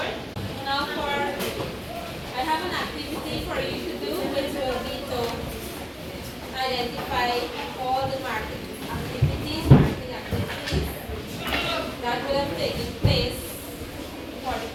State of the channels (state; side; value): identical; both; correlation 1.00